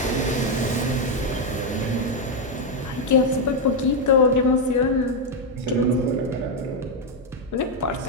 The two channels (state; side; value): normal; both; correlation 0.02